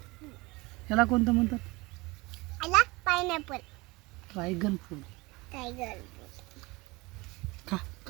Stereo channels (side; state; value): left; quieter; 23.6 dB